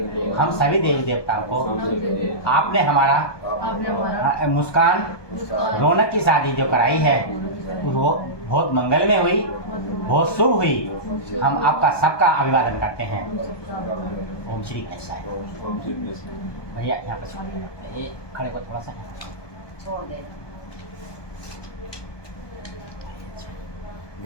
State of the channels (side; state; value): right; late; 1.2 ms